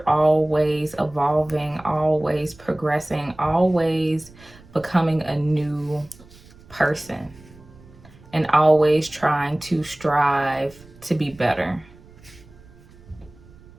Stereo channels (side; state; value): right; noise; rumble, 24 dB below the sound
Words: always evolving, always progressing, always becoming a new person, and always trying to strive to be better.